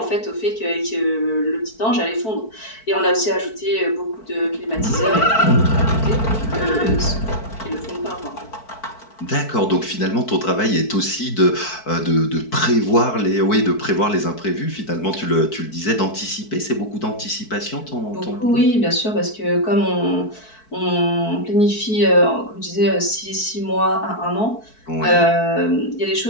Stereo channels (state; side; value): late; right; 4.6 ms